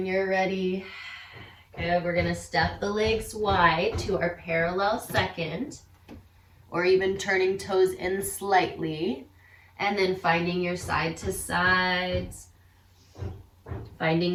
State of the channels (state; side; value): identical; both; correlation 1.00